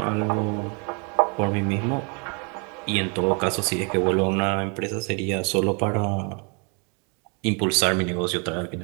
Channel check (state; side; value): quieter; left; 35.4 dB